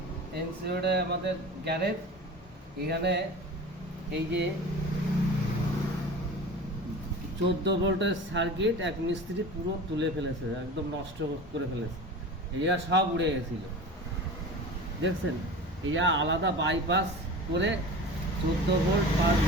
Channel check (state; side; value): normal; both; correlation 0.35